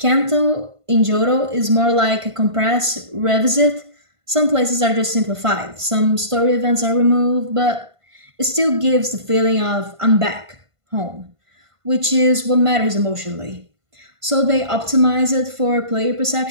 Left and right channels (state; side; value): late; left; 1.5 ms